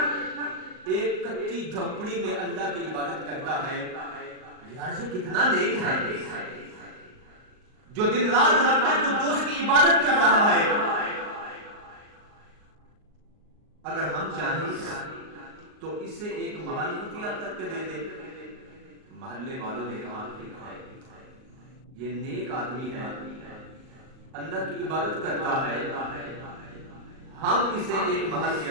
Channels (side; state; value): left; late; 38 ms